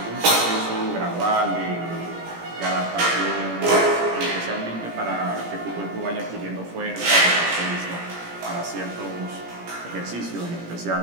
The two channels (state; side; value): late; left; 17 ms